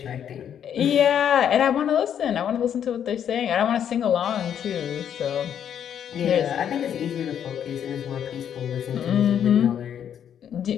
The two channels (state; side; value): quieter; right; 9.1 dB